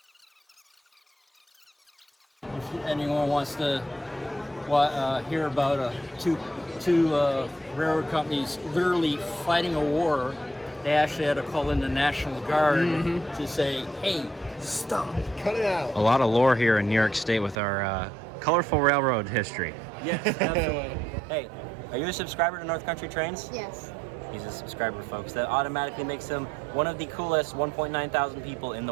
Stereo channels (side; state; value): left; drops out; at 17.6 s